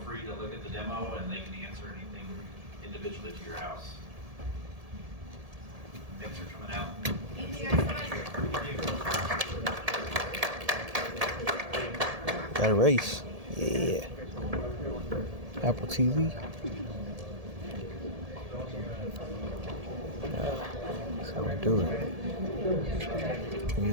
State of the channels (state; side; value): late; left; 1.7 ms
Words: free to look at the demo and they can answer anything individually to your house. Thanks for coming out. Thank you guys so much. Got a race. Yeah. Apple TV. That's how we do it.